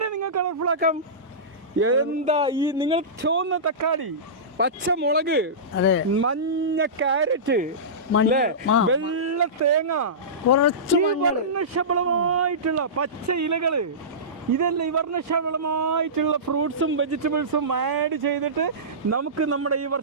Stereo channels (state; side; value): normal; both; correlation -0.20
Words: നിങ്ങൾ കളർഫുൾ ആക്കാം? എന്താ ഈ നിങ്ങൾ ചുവന്ന തക്കാളി, പച്ചമുളക്, മഞ്ഞ ക്യാരറ്റ്, വെള്ള തേങ്ങ, ഈ വർണ്ണശബളമായിട്ടുള്ള പച്ച ഇലകള്, ഇതല്ല ഈ വർണ്ണശബളമായിട്ടുള്ള ഫ്രൂട്ട്സും വെജിറ്റബിൾസും ആഡ് ചെയ്തിട്ട് നമുക്ക് നമ്മുടെ ഈ